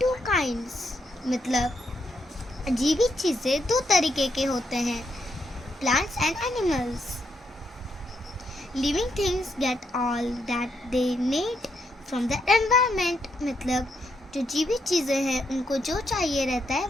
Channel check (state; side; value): normal; both; correlation 0.78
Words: two kinds. मतलब जीवित चीज़ें दो तरीके के होते हैं, plants and animals. Living things get all that they need from the environment. मतलब जो जीवित चीज़ें हैं उनको जो चाहिए रहता है